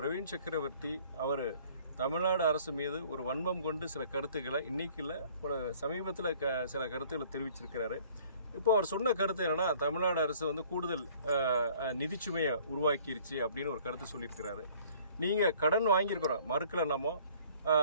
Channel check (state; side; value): inverted; both; correlation -0.55